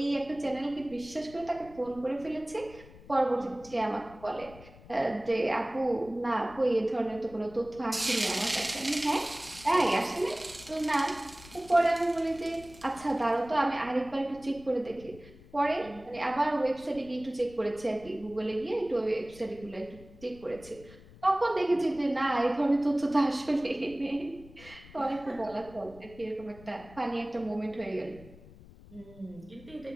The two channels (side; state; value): left; noise; rumble, 20 dB below the sound